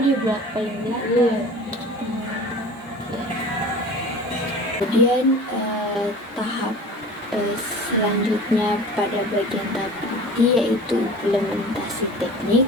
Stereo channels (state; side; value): normal; both; correlation 0.40